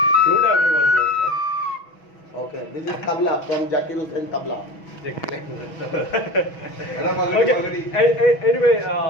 Flute everyone knows, huh? Okay, this is tabla from Zakir Hussain tabla. Okay. Anyway,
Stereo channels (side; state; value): right; late; 6.2 ms